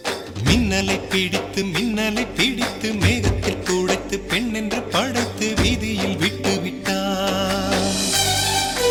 மின்னலை பிடித்து மேகத்தில் துடைத்து பெண் என்று படைத்து வீதியில் விட்டு விட்டான்.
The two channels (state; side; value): identical; both; correlation 1.00